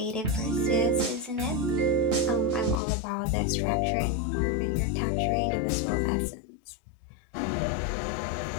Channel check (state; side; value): drops out; right; at 2.8 s